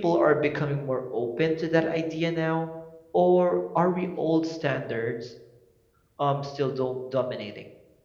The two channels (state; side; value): identical; both; correlation 1.00